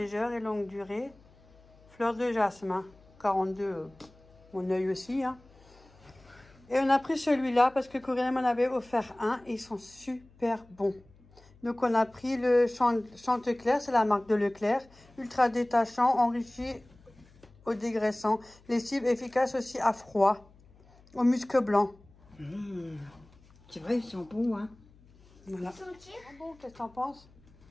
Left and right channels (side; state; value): left; noise; hum, 27 dB below the sound